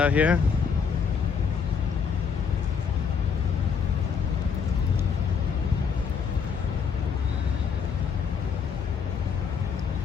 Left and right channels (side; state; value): right; quieter; 6.4 dB